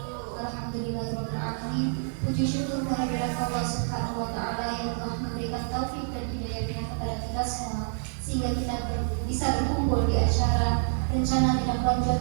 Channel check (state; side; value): silent; left; 58 dB below the other